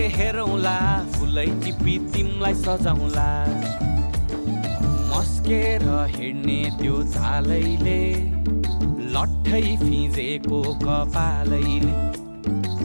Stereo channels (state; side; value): inverted; both; correlation -1.00